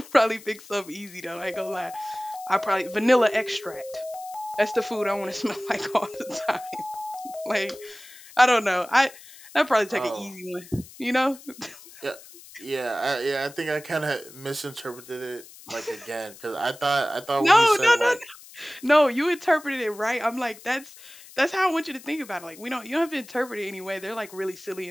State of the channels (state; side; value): noise; left; hiss, 19 dB below the sound